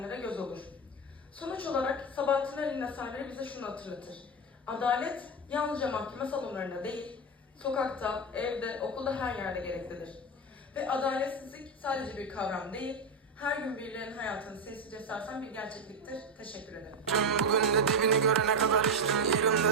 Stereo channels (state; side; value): normal; both; correlation 0.13